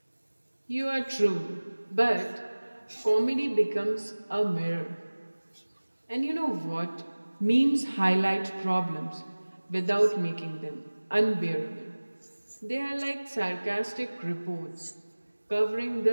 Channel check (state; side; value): inverted; both; correlation -1.00